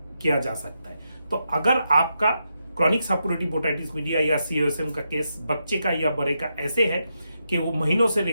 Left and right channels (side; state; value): both; inverted; correlation -0.84